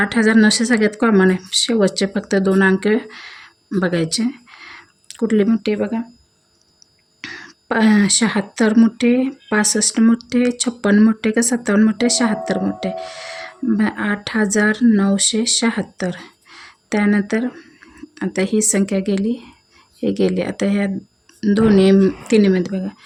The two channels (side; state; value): both; identical; correlation 1.00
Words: सगळ्यात कॉमन आहे. शेवटचे फक्त 2 अंक बघायचे. कुठली मोठी बघा, 76 मोठे, 65 मोठे, 56 मोठे का 57 मोठे, 76 मोठे. 8,976. त्यानंतर आता ही संख्या गेली, हे गेली. आता ह्या तिन्हीमध्ये बघा,